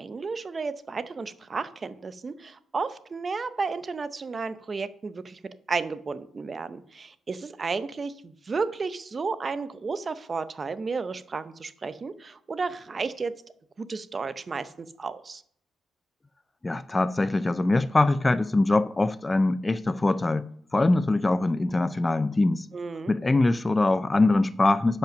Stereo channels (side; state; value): both; normal; correlation 0.95